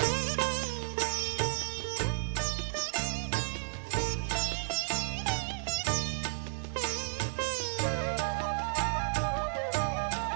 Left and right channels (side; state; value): left; silent; digital silence